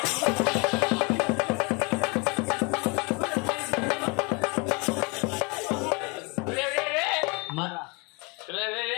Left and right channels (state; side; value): quieter; right; 30.2 dB